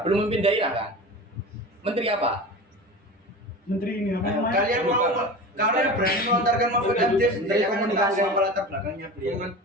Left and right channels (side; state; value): both; normal; correlation 0.32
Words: memimpin daerah kan. Menteri apa? Menteri ini apa namanya? Kalian berani melontarkan Mahfud MD sendiri Menteri akan Komunikasi. tahu apa latar belakangnya beliau.